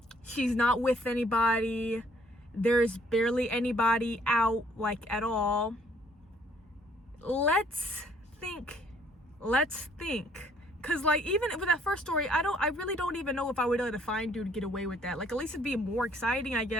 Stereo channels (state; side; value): normal; both; correlation 0.63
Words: She's not with anybody. There's barely anybody out, like, at all. Let's think. Cause like, even with that first story, I really don't even know if I would let a fine dude get away with that. Like, at least it'd be more exciting, I